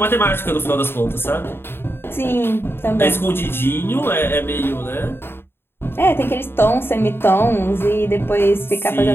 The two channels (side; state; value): right; late; 0.11 ms